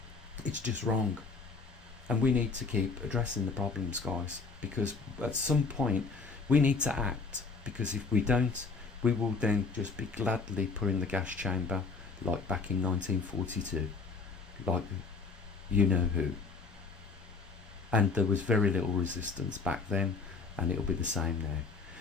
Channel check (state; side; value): quieter; right; 4.5 dB